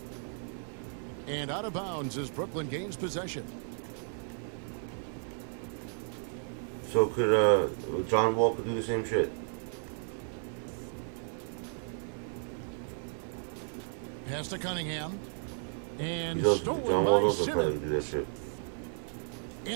And out of bounds as Brooklyn gains possession. So could John Walker do the same shit? Pass to Cunningham. And John stolen Walker by can probably Simmons. do that shit.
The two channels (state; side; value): silent; left; 55 dB below the other